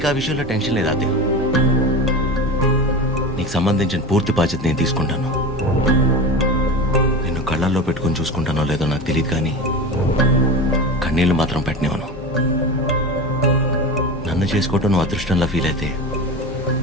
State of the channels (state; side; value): normal; both; correlation 0.28